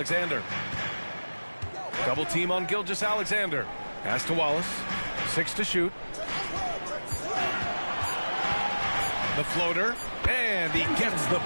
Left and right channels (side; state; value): both; inverted; correlation -1.00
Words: Double team on Gilgeous-Alexander. Pass to Wallace. 6 to shoot. The floater. And he gets the